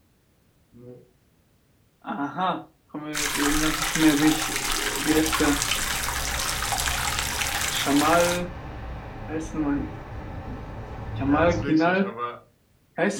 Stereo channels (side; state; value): both; identical; correlation 1.00